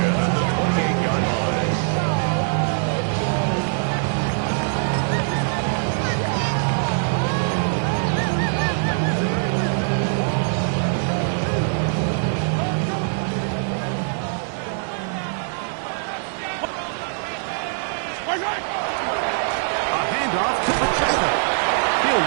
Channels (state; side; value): silent; left; 61 dB below the other